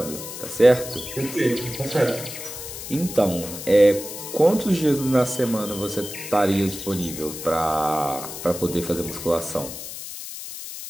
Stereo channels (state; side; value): noise; left; hiss, 10 dB below the sound